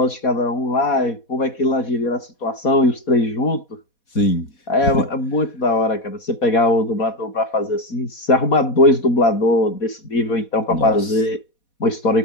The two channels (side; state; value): right; late; 4.2 ms